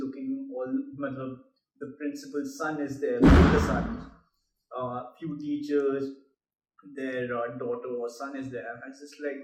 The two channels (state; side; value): identical; both; correlation 1.00